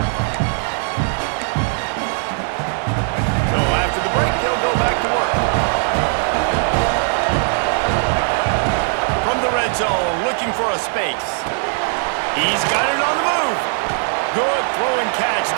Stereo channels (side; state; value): left; silent; 57 dB below the other